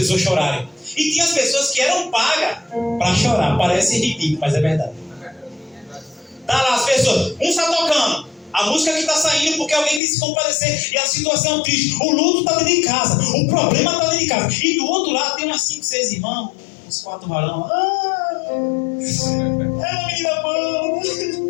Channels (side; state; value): right; drops out; at 10.0 s